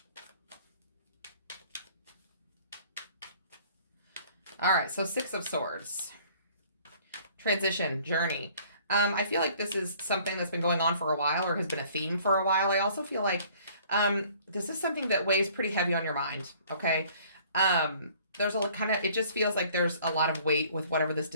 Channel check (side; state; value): both; inverted; correlation -0.56